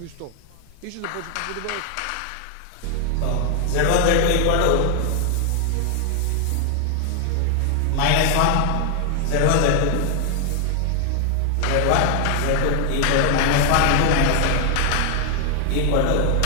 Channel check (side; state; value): both; different; correlation 0.00